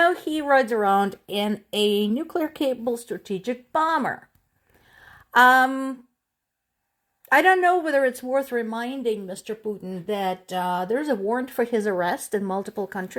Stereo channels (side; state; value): both; identical; correlation 1.00